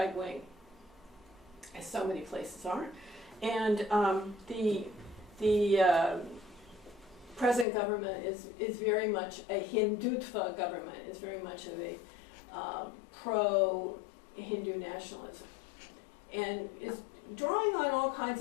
wing, as so many places are. And the present government is very much a Hindutva government, is very much of a pro-Hindu nationalism, and is drawing on all kinds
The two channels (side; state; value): right; drops out; at 7.7 s